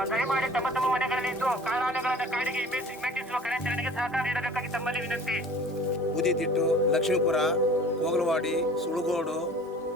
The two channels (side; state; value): both; normal; correlation 0.46